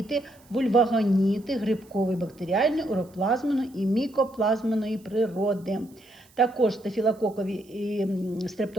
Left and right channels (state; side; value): noise; right; hiss, 29 dB below the sound